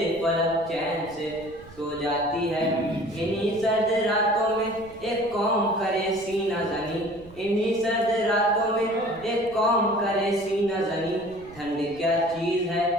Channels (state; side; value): noise; right; rumble, 21 dB below the sound